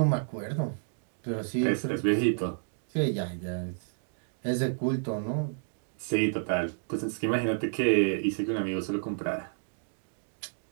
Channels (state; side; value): silent; left; digital silence